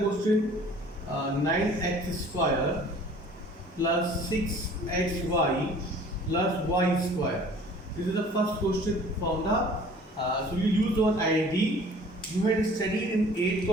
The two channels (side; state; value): both; normal; correlation 0.50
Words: 9x square plus 6xy plus y square. This is the first question from the so you use one identity. You had studied in 8th